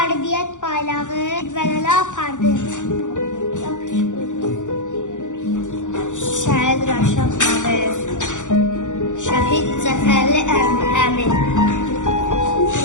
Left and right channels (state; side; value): late; right; 0.86 ms